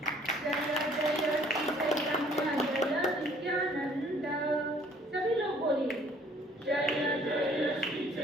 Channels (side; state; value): both; normal; correlation 0.58